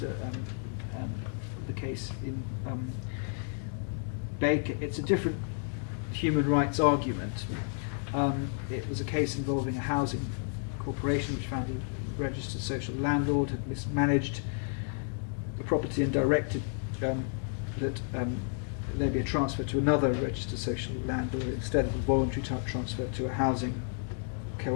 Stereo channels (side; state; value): right; silent; 57 dB below the other